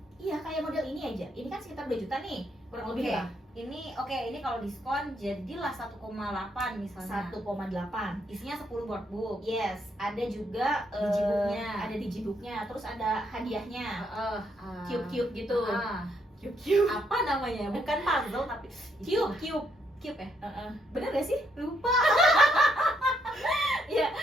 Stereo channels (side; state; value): both; normal; correlation 0.74